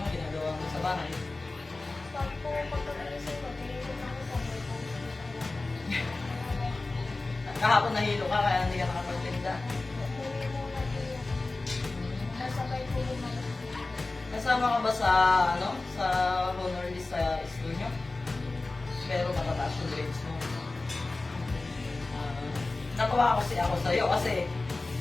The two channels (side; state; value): right; quieter; 3.3 dB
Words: ginagawa mo sa bahay? Pag po pagkakagising ko, tinigil ako sa may po. Kahapon nahilo ka kaya hindi ka nakapagtinda. Hindi mo natin yan. Nasabay po yung mga. Kasama ka ba sa sa honor list sa school nyo? Pero matataas yung grades mo. Natuwa ako sa'yo kasi